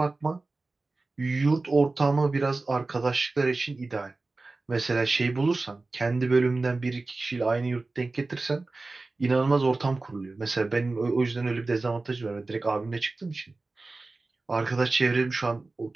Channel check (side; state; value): left; quieter; 3.4 dB